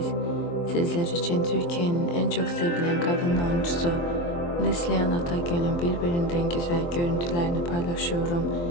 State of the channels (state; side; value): late; right; 23 ms